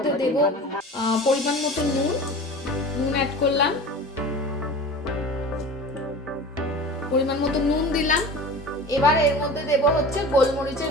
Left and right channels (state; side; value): normal; both; correlation 0.36